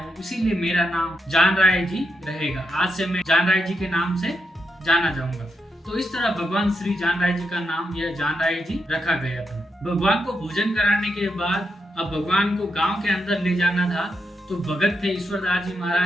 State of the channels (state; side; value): normal; both; correlation 0.84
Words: इसीलिए मेरा नाम जान राय जी रहेगा। आज से मैं जान राय जी के नाम से जाना जाऊंगा। तो इस तरह भगवान श्री जान राय जी का नाम यह जान राय जी रखा गया था। भगवान को भोजन कराने के बाद अब भगवान को गांव के अंदर ले जाना था। तो भगत थे ईश्वरदास जी